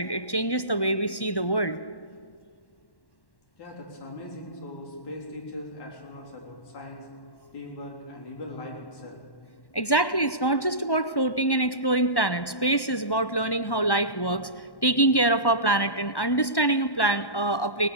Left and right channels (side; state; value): right; late; 1.1 ms